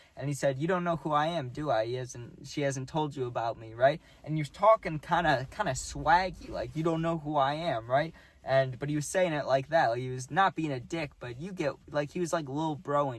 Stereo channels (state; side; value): identical; both; correlation 1.00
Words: And he said, "You don't know who I am, do I? She hasn't told you about me, right?" And you're talking kind of swaggy, like you don't know who I am, right? But he was saying it like that. Like he was not being a dick, but you get, like, he was like little